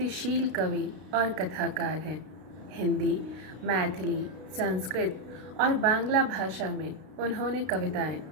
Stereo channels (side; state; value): left; late; 32 ms